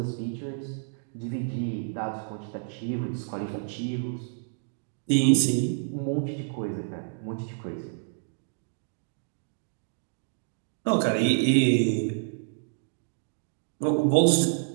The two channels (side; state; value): left; silent; digital silence